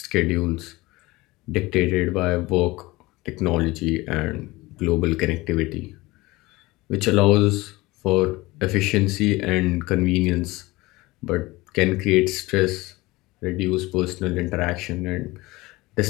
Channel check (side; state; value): right; quieter; 20.9 dB